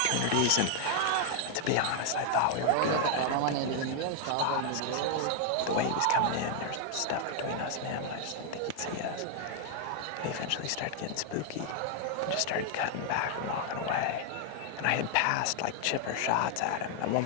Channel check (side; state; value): both; different; correlation 0.00